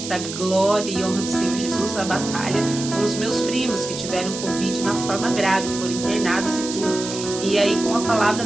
a glória e honra do Senhor Jesus a batalha com os meus primos que tiveram Covid na forma grave, foram internados e tudo. E aí com a palavra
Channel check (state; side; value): noise; right; hiss, 8 dB below the sound